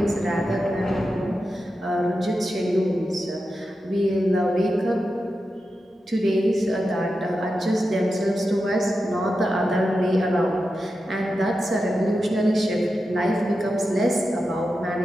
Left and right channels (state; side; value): normal; both; correlation 0.90